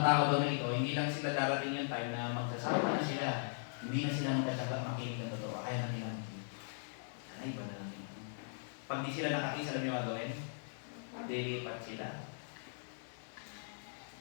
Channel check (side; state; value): right; silent; 52 dB below the other